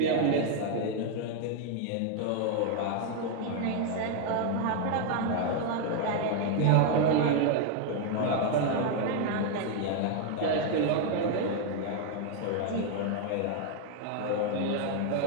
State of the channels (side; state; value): both; different; correlation 0.00